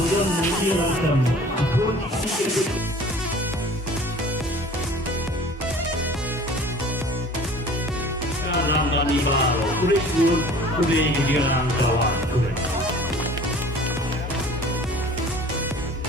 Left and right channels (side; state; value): both; normal; correlation 0.46